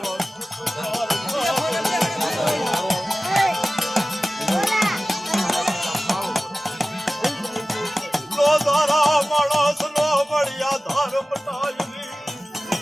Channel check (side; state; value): both; normal; correlation 0.96